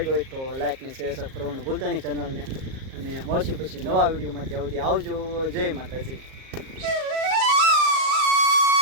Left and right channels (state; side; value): late; left; 38 ms